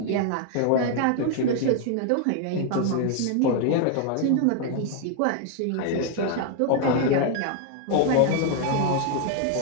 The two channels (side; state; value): both; different; correlation 0.00